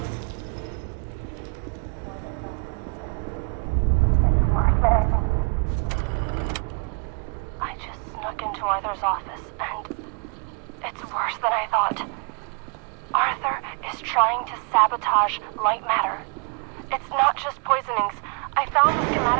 It's worse than I thought. Arthur's office, and it's worse than I thought. Arthur is trying to sabotage Lightmatter. It's not just poisonings. I found the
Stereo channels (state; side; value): quieter; left; 35.7 dB